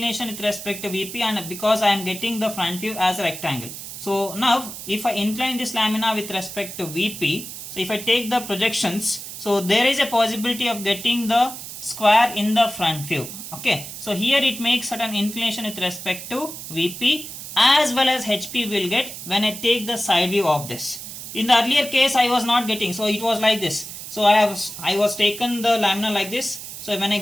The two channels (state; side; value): noise; right; hiss, 10 dB below the sound